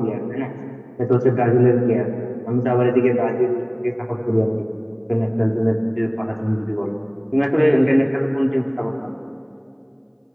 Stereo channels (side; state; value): both; identical; correlation 1.00